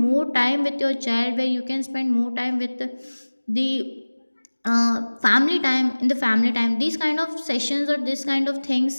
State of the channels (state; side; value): inverted; both; correlation -1.00